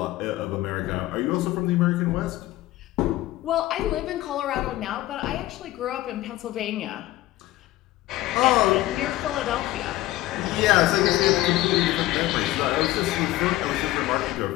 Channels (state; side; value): quieter; right; 16.5 dB